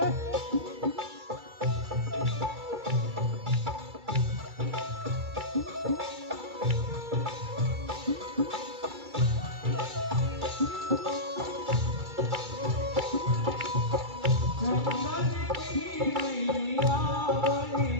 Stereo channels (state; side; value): late; left; 2.3 ms